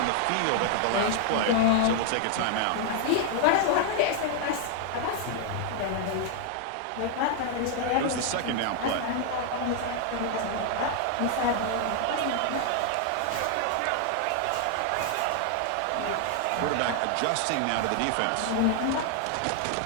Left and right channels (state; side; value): different; both; correlation 0.00